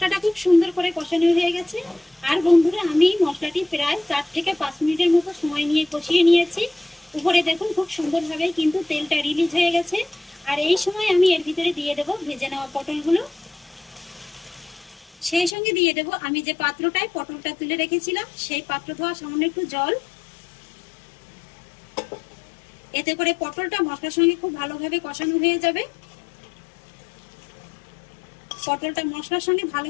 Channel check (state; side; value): drops out; right; at 15.6 s